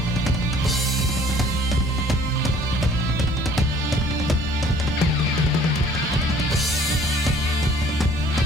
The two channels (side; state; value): both; normal; correlation 0.56